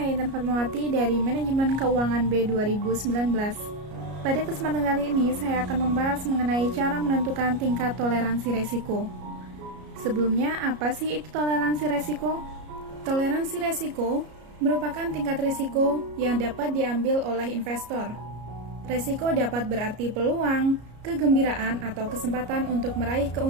Intan Fatmawati dari Manajemen Keuangan B 2019. Pada kesempatan kali ini, saya akan membahas mengenai cara menentukan tingkat toleransi resiko. Sebelumnya, apa sih itu toleransi resiko? Toleransi resiko merupakan tingkat risiko yang dapat diambil oleh investor. Resiko dapat berarti peluang, kegembiraan, atau kesempatan untuk meraih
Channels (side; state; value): left; late; 33 ms